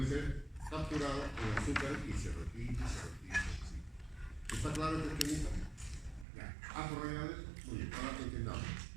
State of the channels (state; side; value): drops out; left; at 6.2 s